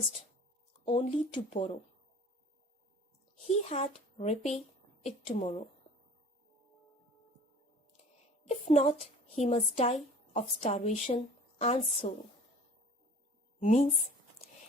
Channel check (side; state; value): both; normal; correlation 0.46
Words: only to borrow. He had repay it tomorrow. If not, he must die of starvation and sorrow. Means,